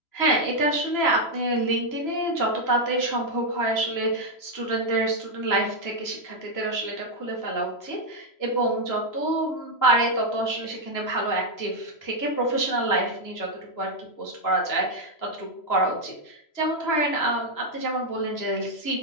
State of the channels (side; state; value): right; late; 3.0 ms